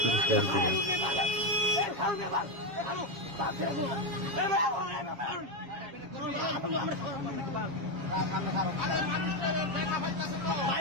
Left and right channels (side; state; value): left; late; 7.4 ms